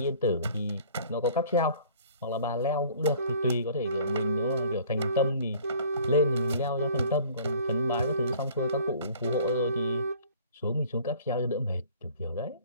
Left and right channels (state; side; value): inverted; both; correlation -0.53